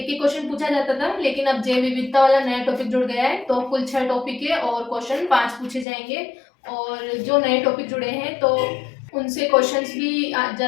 ही क्वेश्चन पूछा जाता था, लेकिन अब जैव विविधता वाला नया टॉपिक जुड़ गया है, तो कुल 6 टॉपिक है और क्वेश्चन 5 पूछे जाएंगे। और जो नए टॉपिक जुड़े हैं तो उनसे क्वेश्चंस भी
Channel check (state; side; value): drops out; right; at 5.9 s